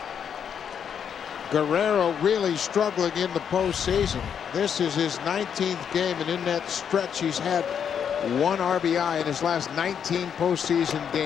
Guerrero really struggling in the postseason. This is his 19th game, and in that stretch he's had 1 RBI in his last 19 postseason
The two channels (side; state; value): right; quieter; 7.9 dB